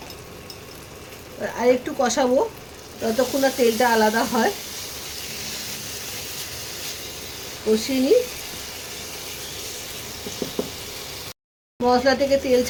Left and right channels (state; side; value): identical; both; correlation 1.00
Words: আর একটু কষাবো ততক্ষণ না তেলটা আলাদা হয়, কষিয়ে নিই। মশলা থেকে তেল